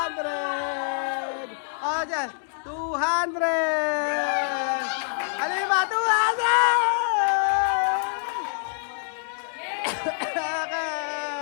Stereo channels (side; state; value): right; silent; 61 dB below the other